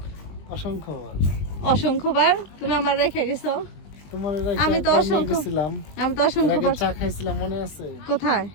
অসংখ্যবার। অসংখ্যবার তুমি আমার রেখে গেছো। তোমার আমি তো অসংখ্যবার চা খাইছিলাম মনে আছে? কোথায়?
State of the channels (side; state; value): right; late; 20 ms